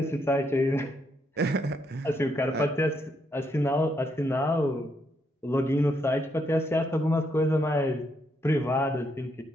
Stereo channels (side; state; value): both; normal; correlation 0.76